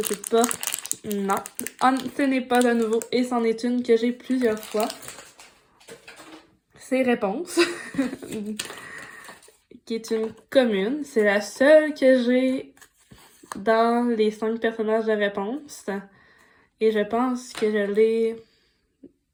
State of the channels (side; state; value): both; identical; correlation 1.00